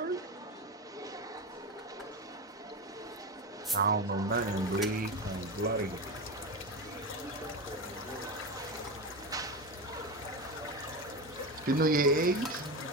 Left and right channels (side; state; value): both; normal; correlation 0.20